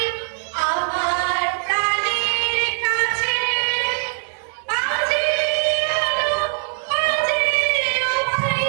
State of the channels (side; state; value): left; silent; 57 dB below the other